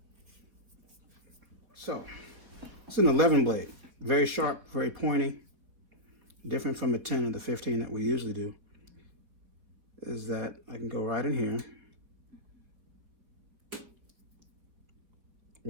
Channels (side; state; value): left; late; 4.3 ms